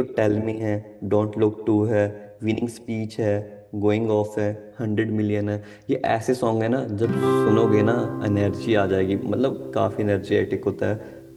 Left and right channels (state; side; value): identical; both; correlation 1.00